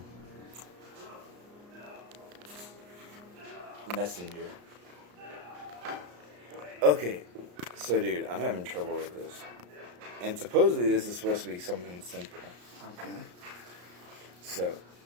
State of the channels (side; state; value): left; late; 34 ms